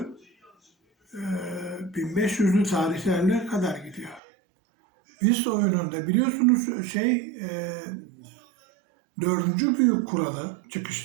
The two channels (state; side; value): drops out; left; at 4.2 s